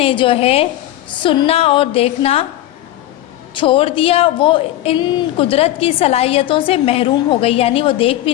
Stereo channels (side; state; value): right; quieter; 14.1 dB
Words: जो है सुनना और देखना छोड़ दिया, वो इन कुदरत की सलाहियतों से महरूम हो गई, यानी वो देख भी